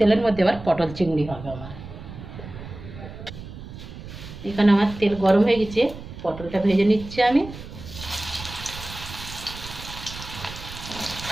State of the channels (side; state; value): right; noise; rumble, 13 dB below the sound